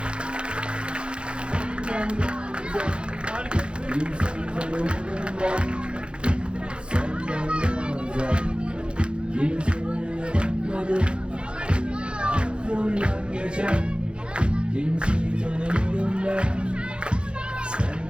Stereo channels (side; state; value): left; late; 0.055 ms